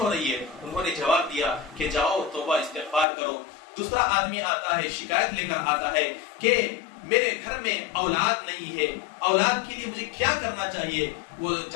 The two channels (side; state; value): right; drops out; at 3.1 s